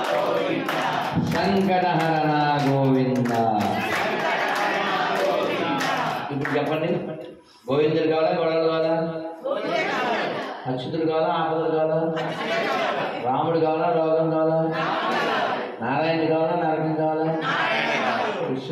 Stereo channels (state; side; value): identical; both; correlation 1.00